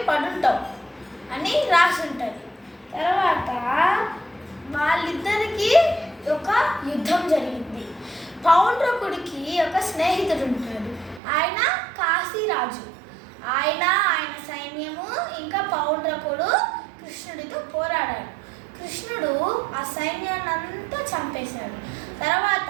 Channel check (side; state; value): left; drops out; at 11.2 s